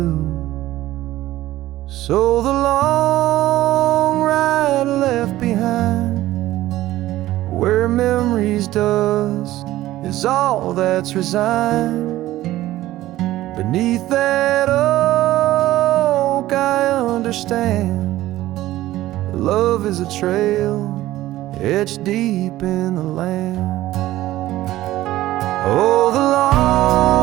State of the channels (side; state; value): left; quieter; 15.6 dB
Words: So the long ride left behind, where memory's dust is all that's resigned. Beneath that oak I understand, love is a trail etched deep in the land. Oh, the